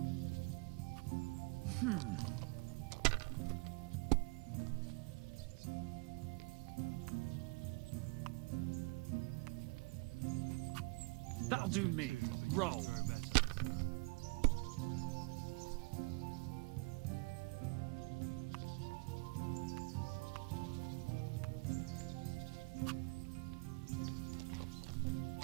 That'll do me. Too, but you Roll. just throw better.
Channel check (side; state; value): left; quieter; 28.1 dB